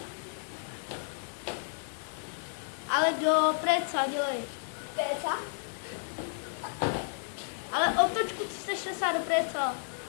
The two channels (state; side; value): silent; right; 56 dB below the other